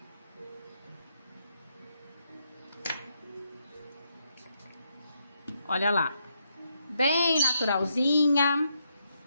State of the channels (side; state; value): both; inverted; correlation -0.79